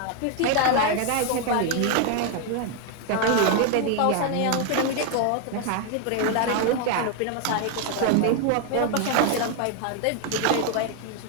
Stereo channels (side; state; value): both; different; correlation 0.01